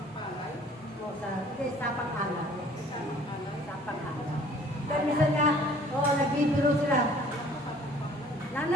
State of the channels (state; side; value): normal; both; correlation 0.53